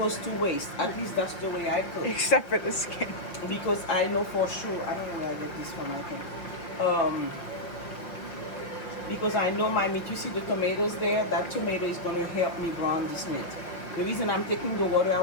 to waste. At least that's the way I cook. Except for the skin. Because I know for sure, I don't know where I get this from, I think. Because I know my meat, you see the tomatoes there? That tomato is going to help me brown this meat. The reason I'm taking the water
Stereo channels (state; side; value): late; right; 5.7 ms